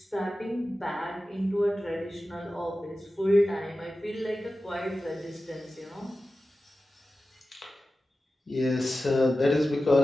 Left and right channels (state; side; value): normal; both; correlation 0.94